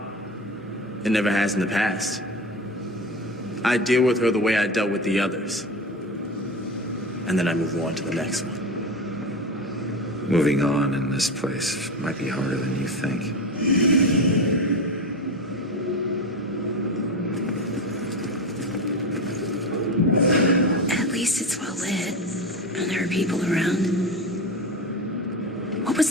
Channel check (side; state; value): both; normal; correlation 0.23